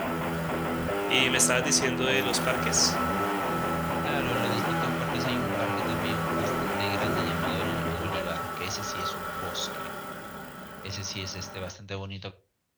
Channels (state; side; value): identical; both; correlation 1.00